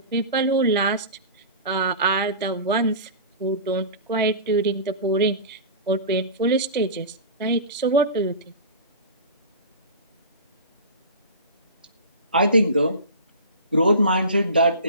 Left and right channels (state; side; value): inverted; both; correlation -0.32